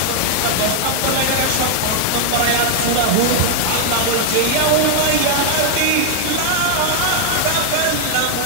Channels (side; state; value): both; different; correlation 0.00